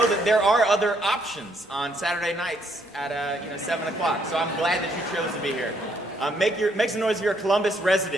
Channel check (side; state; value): both; normal; correlation 0.70